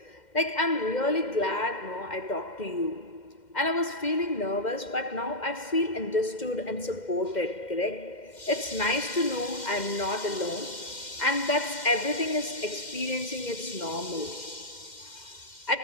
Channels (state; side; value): late; right; 2.1 ms